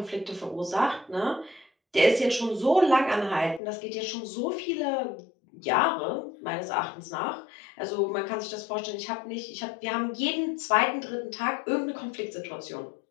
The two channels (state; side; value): drops out; right; at 3.6 s